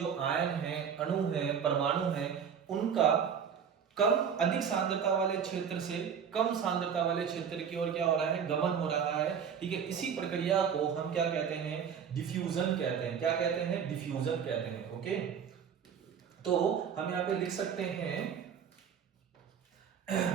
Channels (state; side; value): quieter; left; 7.5 dB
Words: आयन हैं, अणु हैं, परमाणु हैं, उनका कम अधिक सांद्रता वाले क्षेत्र से कम सांद्रता वाले क्षेत्र की ओर क्या हो रहा है? गमन हो रहा है, ठीक है। इसी प्रक्रिया को हम क्या कहते हैं? डिफ्यूजन कहते हैं। क्या कहते हैं? डिफ्यूजन कहते हैं। ओके, तो हम यहां पे लिख सकते हैं